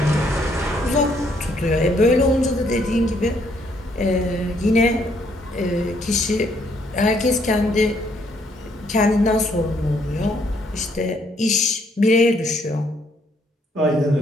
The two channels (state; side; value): normal; both; correlation 0.69